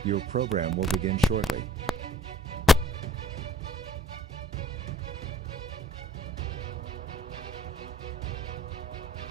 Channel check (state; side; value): normal; both; correlation 0.57